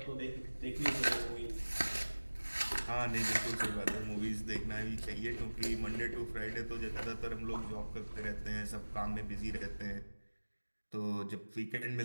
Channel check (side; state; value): both; inverted; correlation -1.00